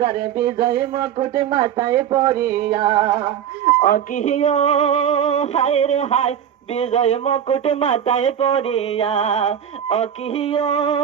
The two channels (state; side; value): quieter; left; 9.3 dB